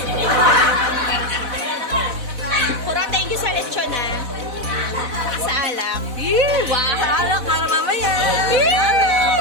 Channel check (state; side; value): late; left; 4.0 ms